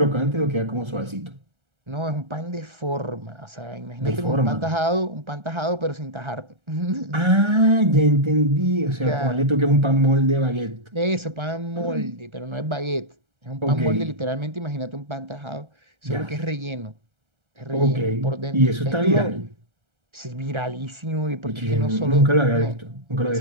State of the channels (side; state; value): left; late; 1.3 ms